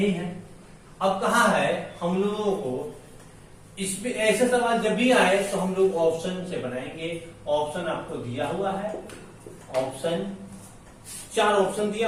है। अब कहा है हम लोगों को इसमें ऐसे सवाल जब भी आए तो हम लोग ऑप्शन से बनाएंगे। ऑप्शन आपको दिया हुआ है, ऑप्शन 4 ऑप्शन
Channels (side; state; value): both; identical; correlation 1.00